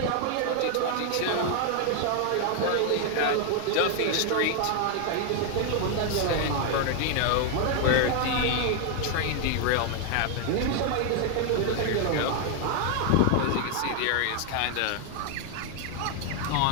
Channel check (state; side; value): different; both; correlation 0.00